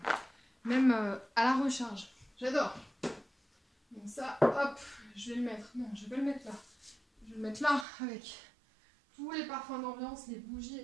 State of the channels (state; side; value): drops out; left; at 7.9 s